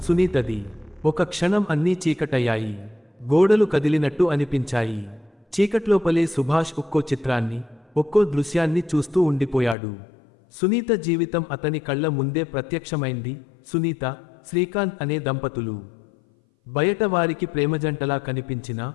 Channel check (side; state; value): right; drops out; at 9.8 s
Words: సునీతది. ఒక క్షణం అన్నీ చీకటయ్యాయి. గోడలు కదిలినట్టు అనిపించాయి. చీకట్లోపలే సుభాష్ ఒక్కో చిత్రాన్ని, ఒక్కో దృశ్యాన్ని చూస్తూ ఉండిపోయాడు. సునీత జీవితం అతని కళ్ళ ముందే ప్రత్యక్షమైంది. సునీత, శ్రీకాంత్ అనే దంపతులు. బయట వారికి ప్రేమజంటలా కనిపించినా